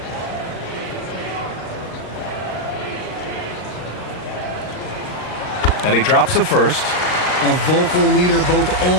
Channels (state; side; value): late; right; 39 ms